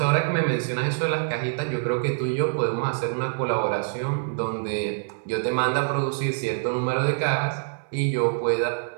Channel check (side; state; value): left; silent; 60 dB below the other